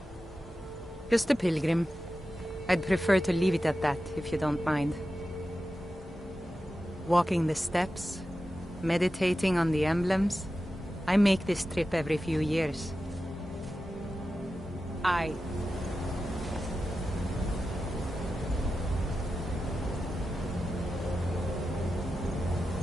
Just a pilgrim. I'd prefer to leave it at that, if you don't mind. Walking the steps, meditating on the emblems. I make this trip every few years.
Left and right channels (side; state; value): both; normal; correlation 0.92